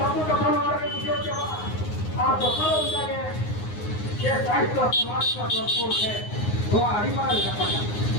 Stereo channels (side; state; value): right; late; 9.6 ms